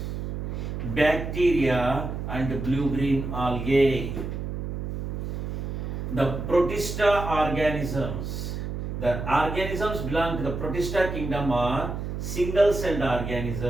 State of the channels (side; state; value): right; noise; hum, 5 dB below the sound